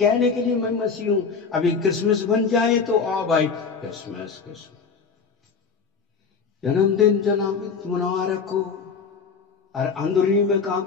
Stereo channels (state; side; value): quieter; right; 5.5 dB